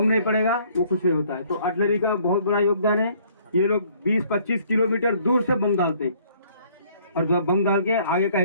नहीं पड़ेगा वो कुछ नहीं होता है। तो आर्टिलरी का बहुत बड़ा योगदान है। ये लोग 20-25 किलोमीटर दूर से बम डालते हैं और जब बम डाल के आगे का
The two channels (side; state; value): both; inverted; correlation -0.60